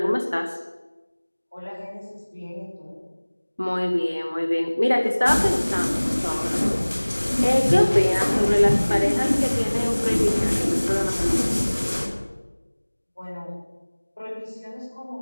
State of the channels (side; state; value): both; inverted; correlation -1.00